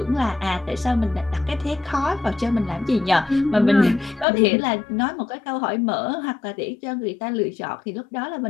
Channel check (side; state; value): right; drops out; at 4.2 s